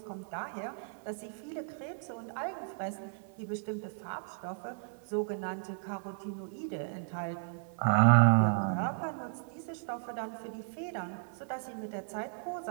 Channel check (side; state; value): left; silent; digital silence